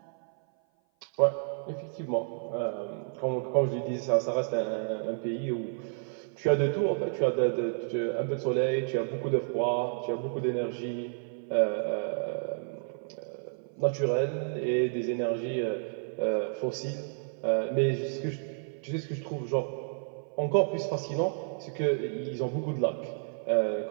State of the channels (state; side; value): silent; left; 55 dB below the other